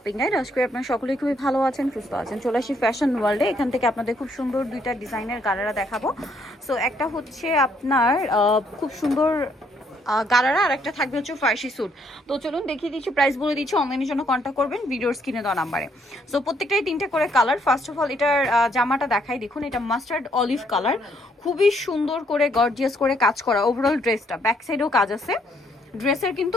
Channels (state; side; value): normal; both; correlation 0.70